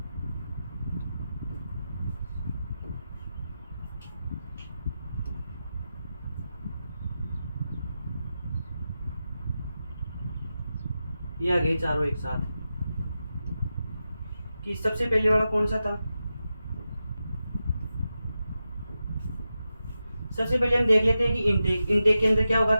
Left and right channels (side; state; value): both; inverted; correlation -0.90